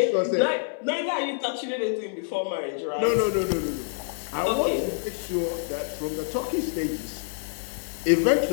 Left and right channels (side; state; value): right; silent; 60 dB below the other